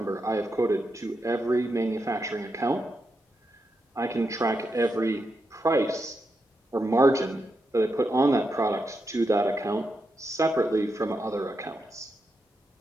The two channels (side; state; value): both; normal; correlation 0.85